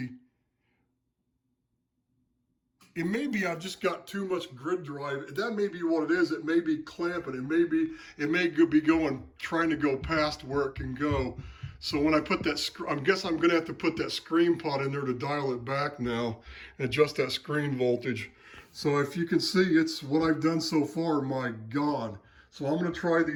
It may be I've just got too much grid drive. That may be what it is. It may be clamping. It may be going, trying to go past where it can go. So when I put that, I guess I'm gonna have to put that screen pot in there to dial it back now and adjust that screen voltage. So if you can see, it's what I've done so far, my God. So I'm gonna try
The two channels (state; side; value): identical; both; correlation 1.00